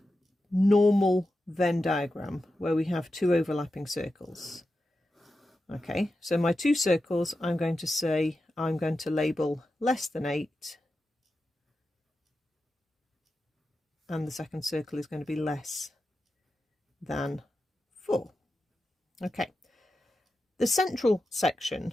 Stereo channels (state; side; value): normal; both; correlation 0.90